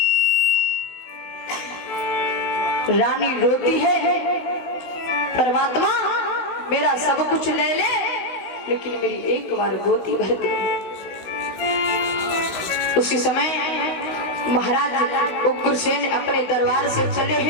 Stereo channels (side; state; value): right; late; 16 ms